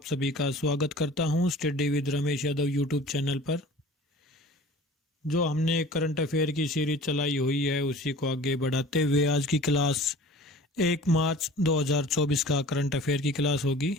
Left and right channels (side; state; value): both; normal; correlation 0.44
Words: सभी का स्वागत करता हूं study with Ramesh Yadav YouTube channel पर। जो हमने करंट अफेयर की सीरीज चलाई हुई है उसी को आगे बढ़ाते हुए आज की क्लास 1 मार्च 2024 का करंट अफेयर की क्लास होगी।